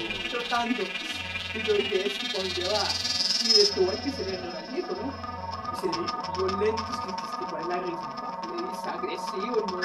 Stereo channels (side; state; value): both; identical; correlation 1.00